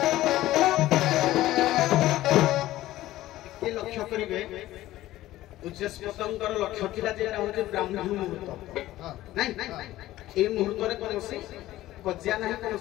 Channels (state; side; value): quieter; right; 15.5 dB